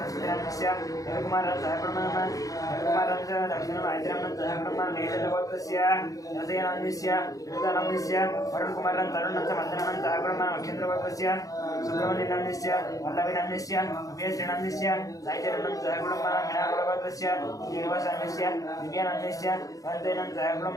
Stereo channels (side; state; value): right; late; 0.17 ms